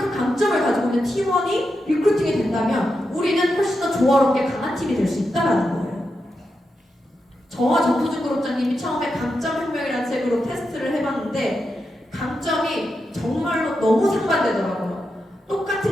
강점을 가지고 있는 팀원이 리크루팅이 된다면 우리는 훨씬 더 조화롭게 강한 팀이 될 수 있다는 거예요. 저와 정수준 그룹장님이 처음에 강점혁명이라는 책으로 테스트를 해봤는데 강점이 정말로 너무 상반되더라고요.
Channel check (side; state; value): both; normal; correlation 0.87